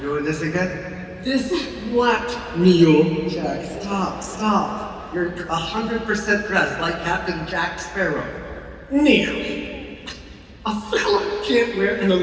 this again? This what, Neil? Jack, stop. You're 100% dressed like Captain Jack Sparrow. Neil, a fella can't wear an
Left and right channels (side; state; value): both; identical; correlation 1.00